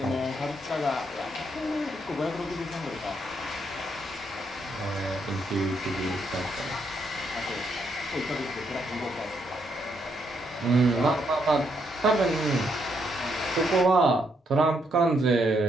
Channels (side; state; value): both; normal; correlation 0.76